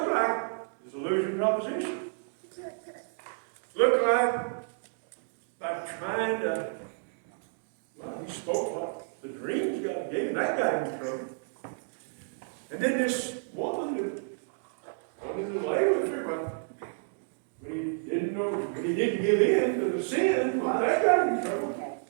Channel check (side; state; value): left; silent; digital silence